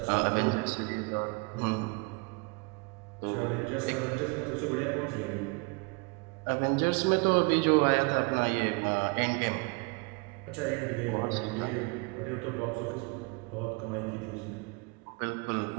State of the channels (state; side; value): quieter; left; 30.3 dB